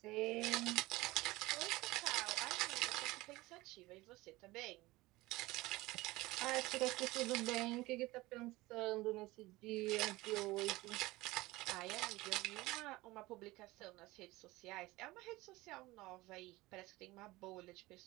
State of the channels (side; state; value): left; quieter; 19.9 dB